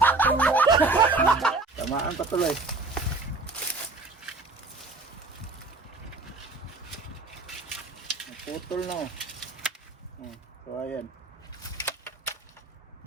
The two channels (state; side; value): quieter; left; 3.4 dB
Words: Tamaan pa tuloy. Naputol na. So ayan.